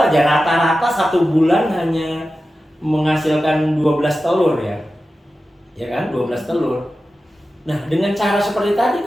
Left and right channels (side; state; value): both; normal; correlation 0.93